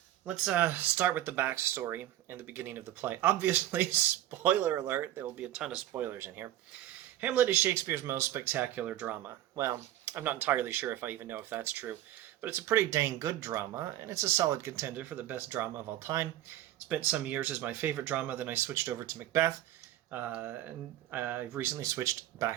Let's start with the backstory and the beginning of the play. Obviously, spoiler alert, there will be a ton of spoilers in here. Hamlet is Shakespeare's most spectacular drama. Well, I'm not entirely sure if I even know if that's true, but it's a pretty dang good drama, and it's a solid contender for the best drama of all time. Spent some years as my favorite drama, then I switched over to Macbeth, and I've recently switched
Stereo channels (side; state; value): left; quieter; 13.6 dB